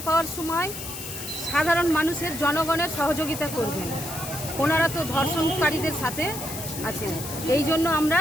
পাওয়ার সময় সাধারণ মানুষের, জনগণের সহযোগিতা করবেন। ওনারা তো ধর্ষণকারীদের সাথে আছেন। এই জন্য আমরা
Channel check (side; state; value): left; noise; hiss, 8 dB below the sound